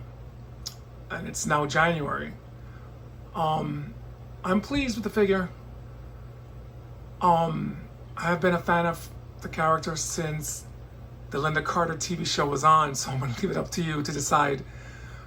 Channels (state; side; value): identical; both; correlation 1.00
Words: and it's now January. I'm pleased with the figure. I have been a fan of the character since the Linda Carter TV show was on, so I'm going to leave it up to you to decide